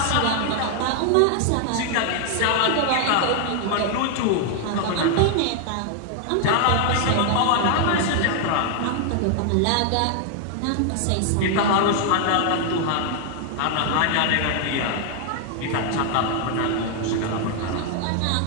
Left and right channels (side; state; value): both; different; correlation 0.00